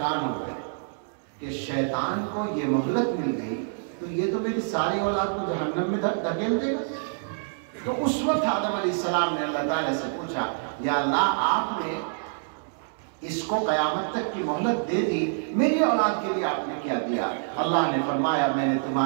ہو گئے کہ شیطان کو یہ مہلت مل گئی تو یہ تو میری ساری اولاد کو جہنم میں دھکیل دے گا۔ تو اس وقت آدم علیہ السلام نے اللہ تعالیٰ سے پوچھا، یا اللہ آپ نے اس کو قیامت تک کی مہلت دے دی، میری اولاد کے لیے آپ نے کیا دیا؟ اللہ نے فرمایا، میں نے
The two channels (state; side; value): silent; left; 60 dB below the other